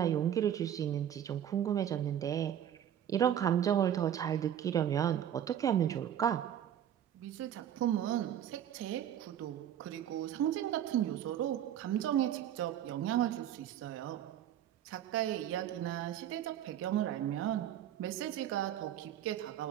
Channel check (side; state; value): left; quieter; 10.3 dB